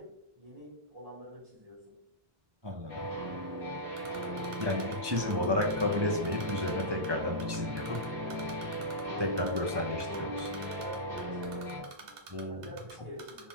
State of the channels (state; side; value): late; left; 1.2 ms